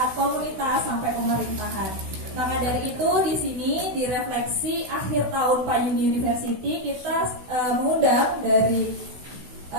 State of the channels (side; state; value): left; late; 16 ms